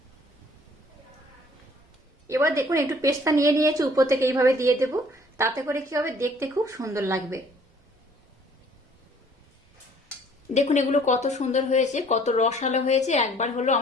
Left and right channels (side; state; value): both; normal; correlation 0.57